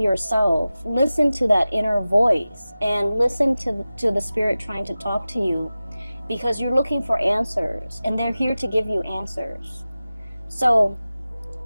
listen to that inner voice, and listen to the spirit trying to talk to you, because you're looking for answers and they're here to give you answers. So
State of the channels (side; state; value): both; inverted; correlation -0.96